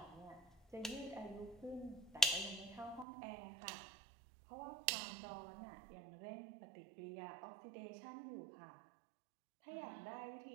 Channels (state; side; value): drops out; left; at 3.1 s